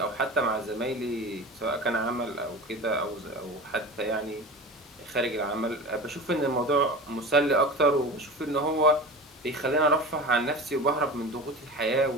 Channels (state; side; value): normal; both; correlation 0.32